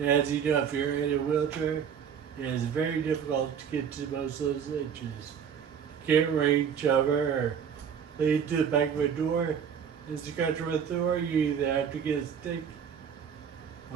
as you know, if you're in a wheelchair, it is very difficult to get to most of those itches. You can't reach over or lead to the back of a door. As you go through a door, you either have to get a stick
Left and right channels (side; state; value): left; quieter; 7.6 dB